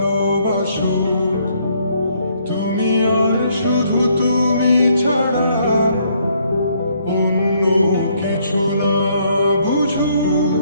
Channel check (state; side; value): inverted; both; correlation -0.69